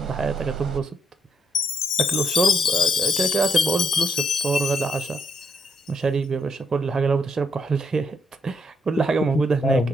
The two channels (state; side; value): normal; both; correlation 0.75